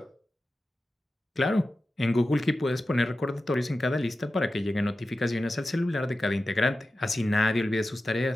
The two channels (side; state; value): both; normal; correlation 0.93